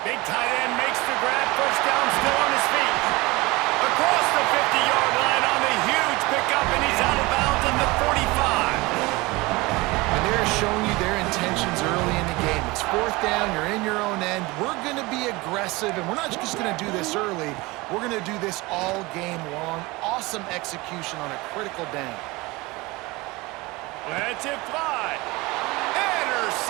Big tight end makes the grab. First down, still on his feet. Across the 50-yard line on the huge pickup, and he's out of bounds at the 45. And they're showing you their intentions early in the game. It's 4th down, you're in your own end. We're going to be aggressive, and we're not just going to do this early. We're going to do this all game long. Awesome execution on a critical down. Lets it fly.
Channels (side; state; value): left; quieter; 22.7 dB